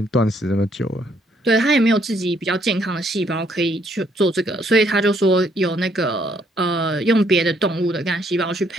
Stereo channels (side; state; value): both; normal; correlation 0.69